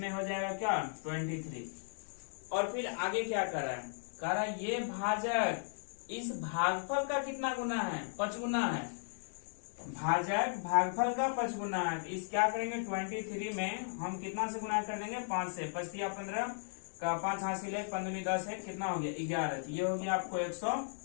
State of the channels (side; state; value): right; silent; digital silence